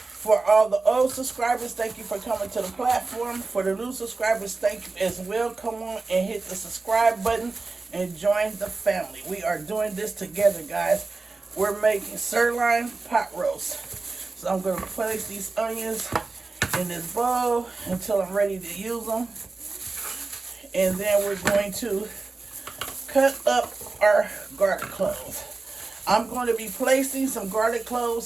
all the old subscribers, thank you for coming to the platform. For the new subscribers, thank you as well. Come on and hit the subscribe button and join the family. We are doing this together, guys. We're making sirloin pot roast. So I'm going to place these onions in this bowl until I'm ready to use them. And then we're going to cut up our garlic cloves. I'm going to be placing some garlic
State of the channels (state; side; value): quieter; left; 3.7 dB